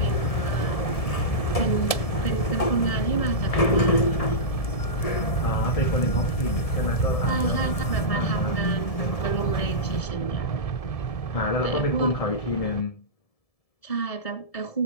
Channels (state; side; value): late; right; 1.7 ms